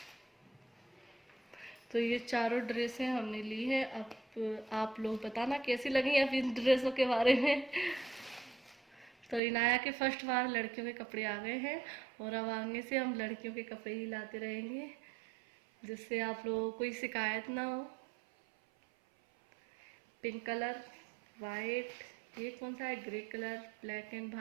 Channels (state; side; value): drops out; left; at 9.4 s